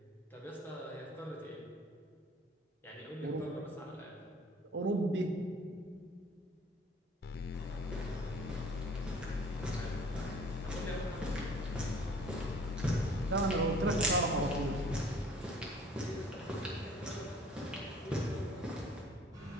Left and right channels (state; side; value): normal; both; correlation 0.51